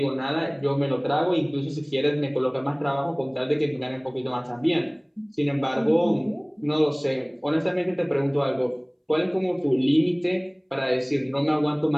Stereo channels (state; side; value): identical; both; correlation 1.00